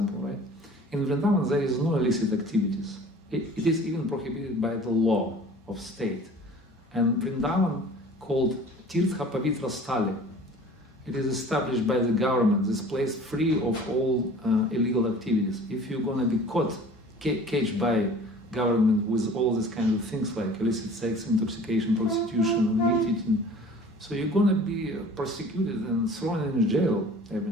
right? In Vrindavan, there is no illicit activities. It is even prohibited by the law of state. And Vrindavan, called Tirtha Pavitra Stali, it is established by the government, this place free of all illegal activities. If you're going to be caged by government with all these kind of things like illicit sex, intoxication, prostitution, meat eating, so you're going to be persecuted and thrown in jail.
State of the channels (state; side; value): normal; both; correlation 0.46